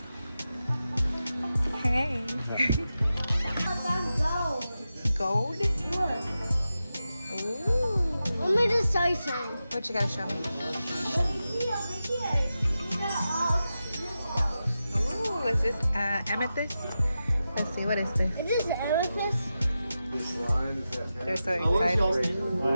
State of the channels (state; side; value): inverted; both; correlation -0.91